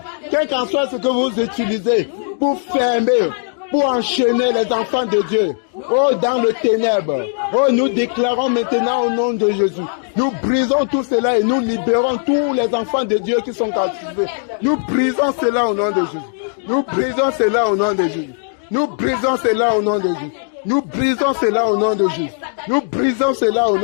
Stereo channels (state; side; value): silent; right; 57 dB below the other